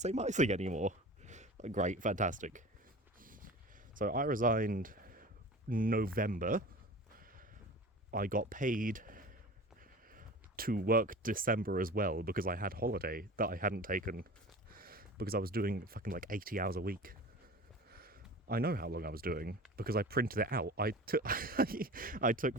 my thing anymore. Like, great, fantastic. So I resigned November. I got paid to work December as well because I had holiday that I hadn't taken because I was doing fucking like 80 hours a week. I know how long I was doing because I printed it out. I took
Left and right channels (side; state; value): both; normal; correlation 0.37